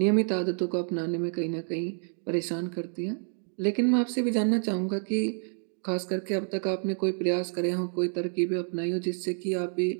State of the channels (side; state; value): left; silent; 56 dB below the other